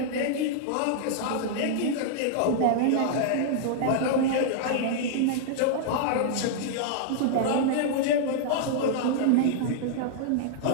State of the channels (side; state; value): both; different; correlation -0.01